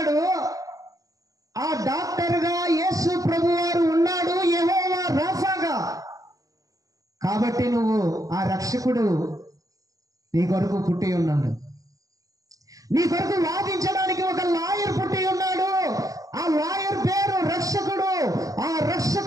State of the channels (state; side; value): late; left; 0.17 ms